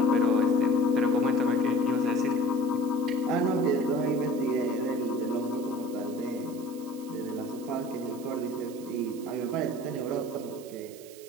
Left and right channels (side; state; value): right; noise; hiss, 20 dB below the sound